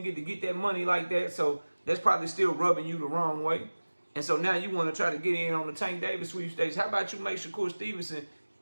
get to get that money like that. So that's probably still rubbing you the wrong way. And so now you want to try to get in on the Tank Davis sweepstakes. How about you make Shakur Stevenson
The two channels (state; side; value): inverted; both; correlation -1.00